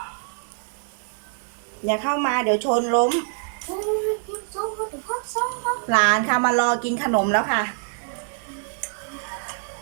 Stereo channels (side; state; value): left; silent; 62 dB below the other